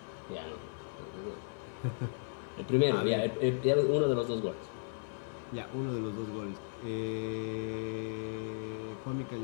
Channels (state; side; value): silent; right; digital silence